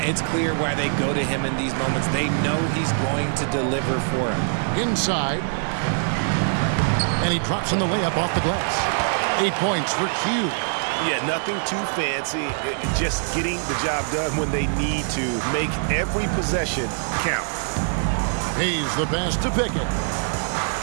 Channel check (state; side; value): silent; left; digital silence